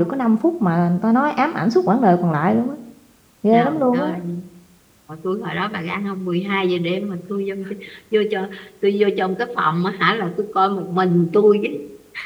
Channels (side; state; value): both; identical; correlation 1.00